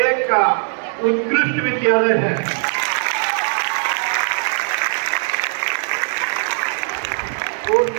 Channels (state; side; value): silent; left; 57 dB below the other